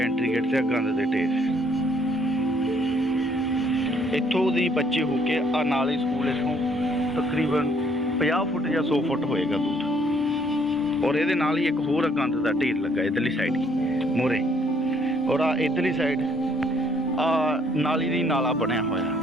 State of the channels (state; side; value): normal; both; correlation 0.64